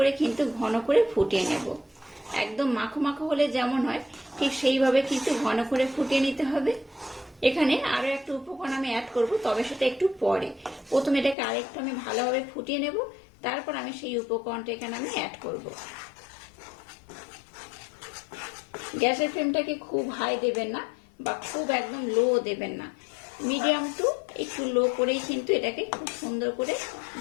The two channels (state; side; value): drops out; right; at 11.4 s